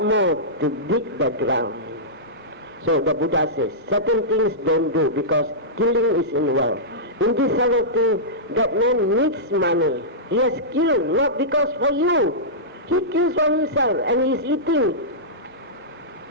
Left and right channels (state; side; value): normal; both; correlation -0.15